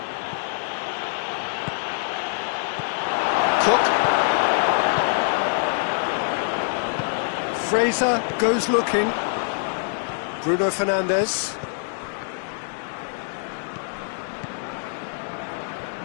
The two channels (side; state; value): right; silent; digital silence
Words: Cook. Fraser goes looking. Bruno Fernandes.